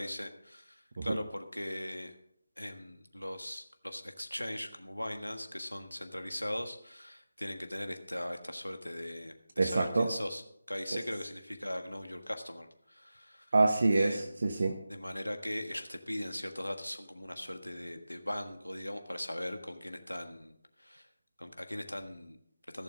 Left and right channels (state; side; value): inverted; both; correlation -0.95